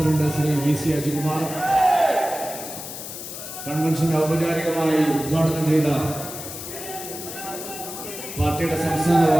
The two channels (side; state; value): left; noise; hiss, 10 dB below the sound